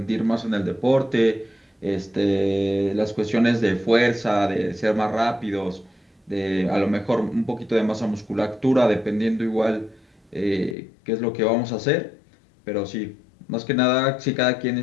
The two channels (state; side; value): drops out; right; at 10.8 s